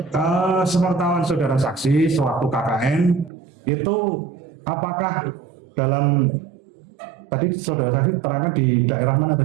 sepengetahuan saudara saksi sewaktu KKN itu apakah dalam tadi saudara saksi terangkan di daerah mana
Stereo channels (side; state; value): left; drops out; at 3.3 s